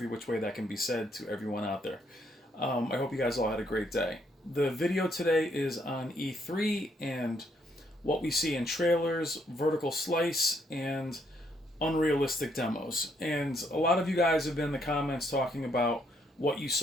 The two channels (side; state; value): both; normal; correlation 0.72